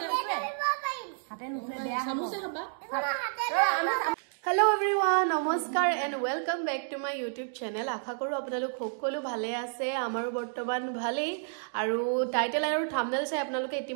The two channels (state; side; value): silent; left; digital silence